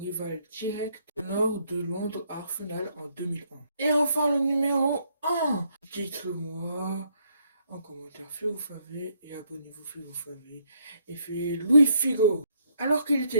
direct au nord de Londres à Arsenal en 2001. Et enfin le numéro 1, dites-le-moi en commentaire si vous savez et abonnez-vous si vous savez. Et c'est Luis Figo. Alors qu'il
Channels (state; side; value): inverted; both; correlation -0.71